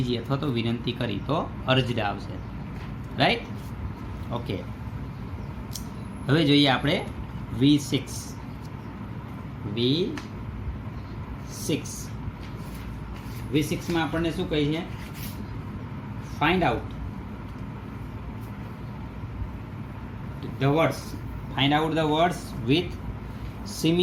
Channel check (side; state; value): both; identical; correlation 1.00